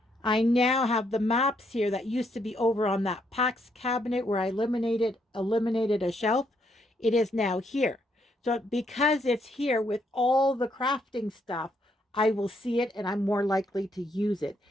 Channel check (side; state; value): both; normal; correlation 0.74